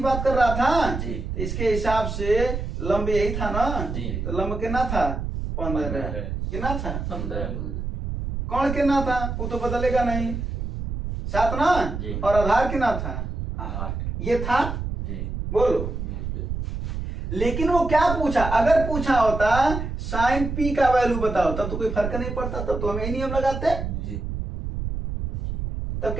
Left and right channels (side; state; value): right; noise; rumble, 4 dB below the sound